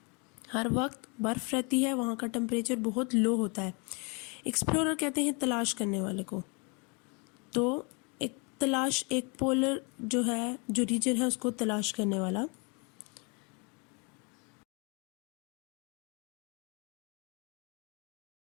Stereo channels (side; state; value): right; quieter; 32.6 dB